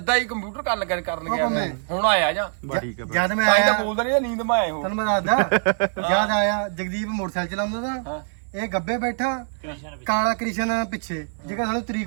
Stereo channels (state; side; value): silent; left; 59 dB below the other